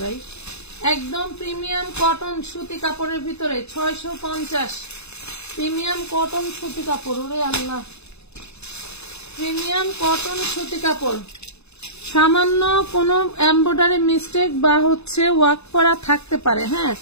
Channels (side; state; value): right; late; 0.80 ms